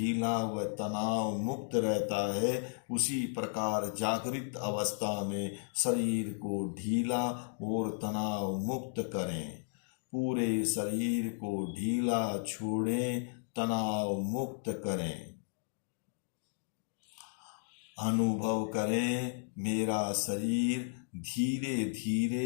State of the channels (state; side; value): silent; right; digital silence